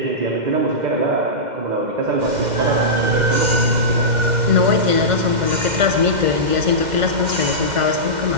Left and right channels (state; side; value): late; left; 2.1 ms